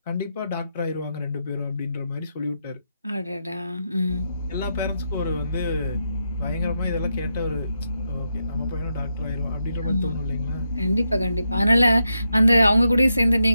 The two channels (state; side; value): inverted; both; correlation -0.84